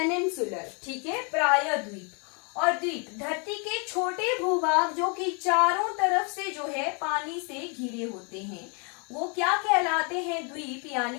ठीक है, प्रायद्वीप। और द्वीप, धरती के छोटे भूभाग जो कि चारों तरफ से जो है पानी से घिरे होते हैं, वो क्या कहलाते हैं? द्वीप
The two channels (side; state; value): right; quieter; 35.9 dB